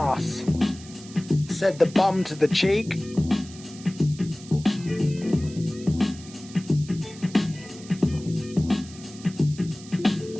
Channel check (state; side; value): noise; right; hiss, 18 dB below the sound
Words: said the bum to the cheek.